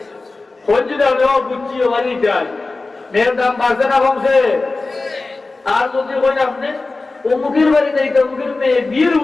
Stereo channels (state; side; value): quieter; right; 3.5 dB